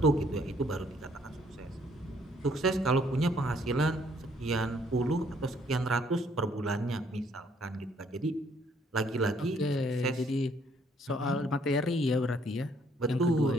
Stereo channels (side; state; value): both; normal; correlation 0.65